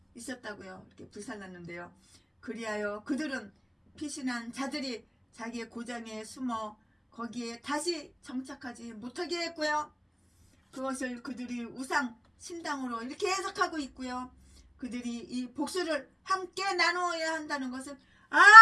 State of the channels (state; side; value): identical; both; correlation 1.00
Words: 이렇게 불살랐는데요. 그리하여 그들은 피신한 자들이 자기의 고장에 숨어 거기에 다시 정착하지 못하게 했고요. 그것을 그들이 우상 신당으로 이렇게 해석하고 있고요. 그들이 이 복수를 함께 나누어야 한다는 것은